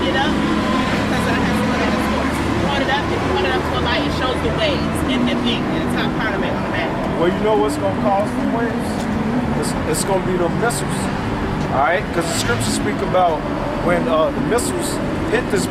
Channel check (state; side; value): identical; both; correlation 1.00